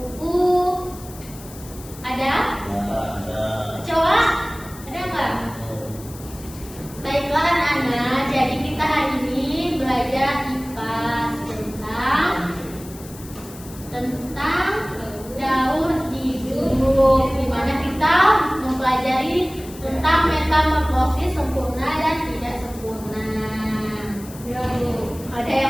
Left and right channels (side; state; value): left; noise; hiss, 18 dB below the sound